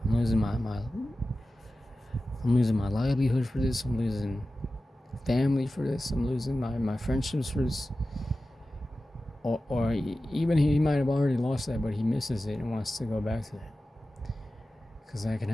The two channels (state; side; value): normal; both; correlation 0.94